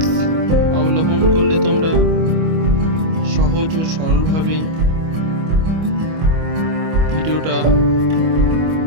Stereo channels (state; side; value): late; left; 25 ms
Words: অবলম্বন করলে তোমরা সহজ ও সরলভাবে ভিডিওটা